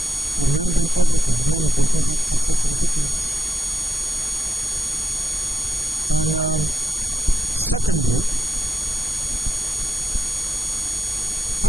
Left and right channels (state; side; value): normal; both; correlation 0.84